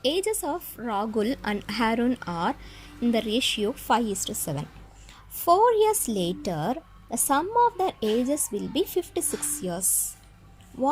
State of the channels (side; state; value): both; identical; correlation 1.00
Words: ages of Rahul and Harun are in the ratio 5:7. 4 years later, the sum of their ages will be 56 years.